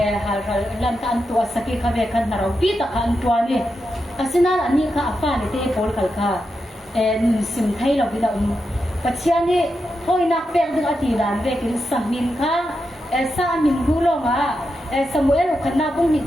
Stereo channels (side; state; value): both; normal; correlation 0.87